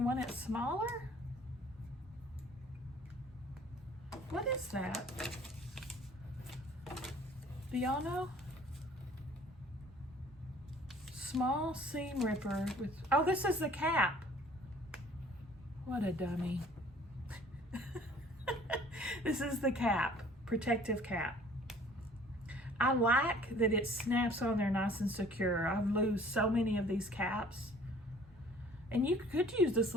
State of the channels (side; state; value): both; normal; correlation 0.52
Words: want it smaller? What is that? Do y'all know? Small seam ripper with, oh, this is the cap. What a dummy. This is the cap, protective cap. I like that it snaps on there nice and secure. I've lost so many of these caps. And you could use this